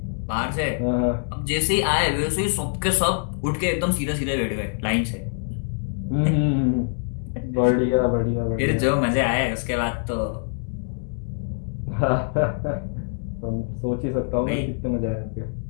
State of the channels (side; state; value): right; silent; digital silence